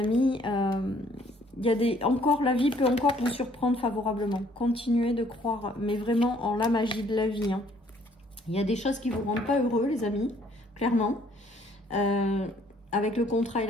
il y a la vie peut encore vous surprendre favorablement. Continuez de croire, mais vraiment en la magie de la vie, hein. Il y a des choses qui vous rendent pas heureux, les amis, clairement. Avec le contrat et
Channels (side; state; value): both; normal; correlation 0.62